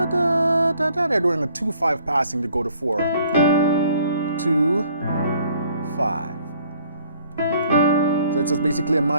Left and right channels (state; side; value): inverted; both; correlation -0.60